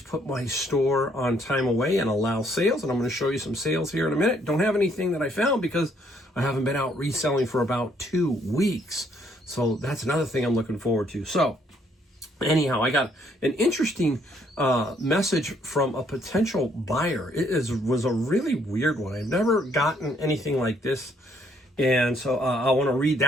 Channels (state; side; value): normal; both; correlation 0.68